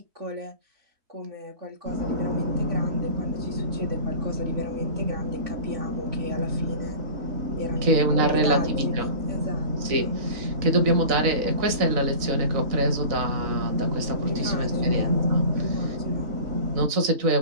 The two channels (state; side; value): late; left; 4.0 ms